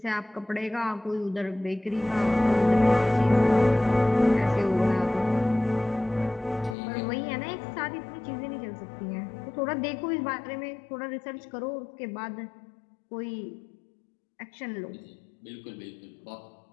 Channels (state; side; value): drops out; right; at 6.8 s